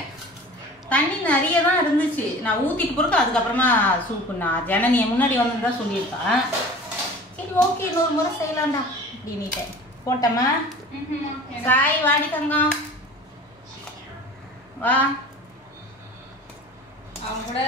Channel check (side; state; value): both; normal; correlation 0.41